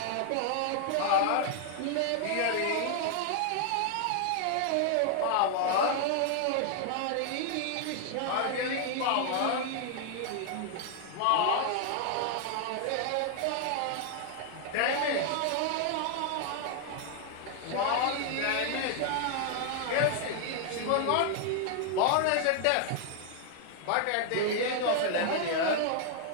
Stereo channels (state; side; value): different; both; correlation 0.00